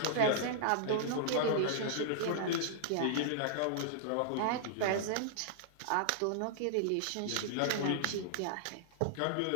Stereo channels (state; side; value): different; both; correlation -0.01